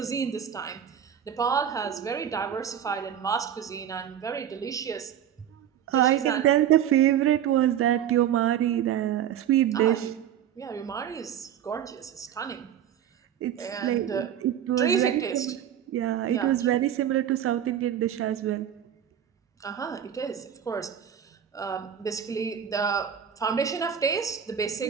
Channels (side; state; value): left; quieter; 9.7 dB